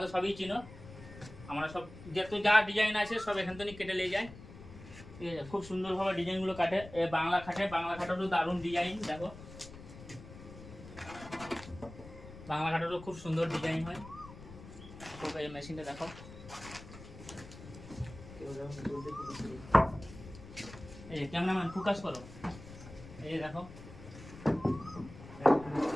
সবই চিনো। আমরা সব যা ডিজাইন আছে সব এখান থেকে কেটে নিয়ে যাই, ঠিক আছে। খুব সুন্দরভাবে ডিজাইনগুলো কাটে। বাংলা খাটেরও দারুণ ডিজাইন দেখো, বাংলা খাটেরও খুব সুন্দর ডিজাইন হয়। তো এই মেশিনটা দেখো, এই ক্যামেরাম্যান ফোকাস করো, এই দেখো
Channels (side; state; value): left; noise; rumble, 15 dB below the sound